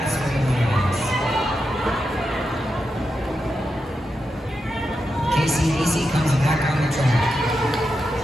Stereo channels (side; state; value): both; normal; correlation 0.87